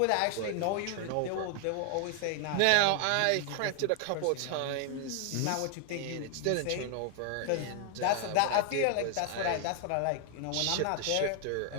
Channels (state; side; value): different; both; correlation 0.00